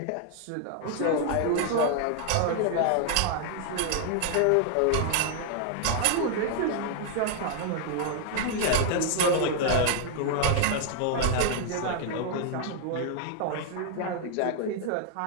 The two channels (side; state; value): both; different; correlation 0.00